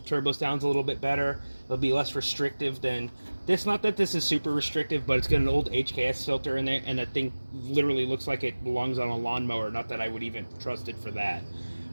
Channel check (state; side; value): inverted; both; correlation -1.00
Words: sounds a little bit better. It'll be less restrictive than this. Not that this is super restrictive, but it's got an old HKS filter in there, and that thing literally looks like it belongs on a lawnmower. Not that I would even trust it for that.